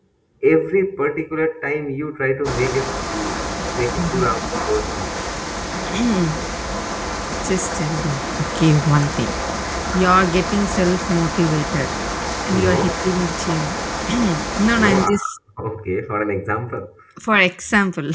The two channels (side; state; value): both; identical; correlation 1.00